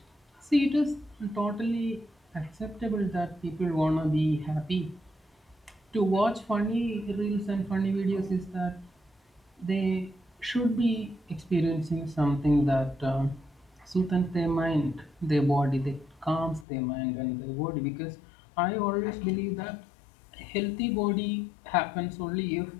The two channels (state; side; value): drops out; right; at 16.7 s